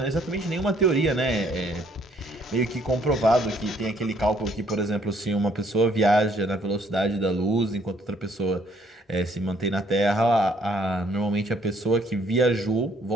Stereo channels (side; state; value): both; normal; correlation 0.65